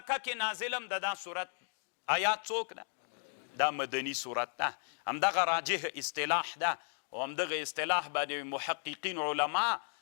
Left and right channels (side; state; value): right; silent; 54 dB below the other